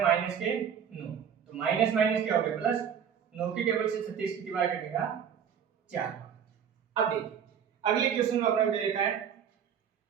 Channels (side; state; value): left; quieter; 8.0 dB